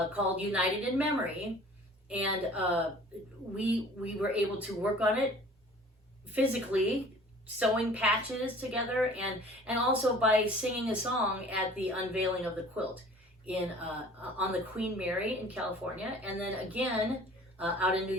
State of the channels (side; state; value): both; normal; correlation 0.48